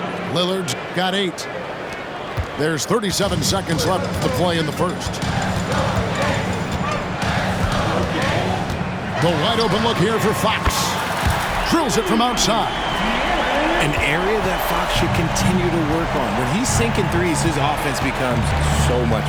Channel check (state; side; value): identical; both; correlation 1.00